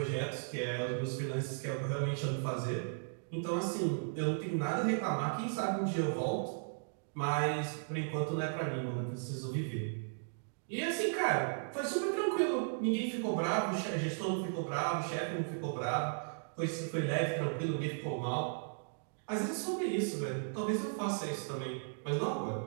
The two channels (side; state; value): left; silent; digital silence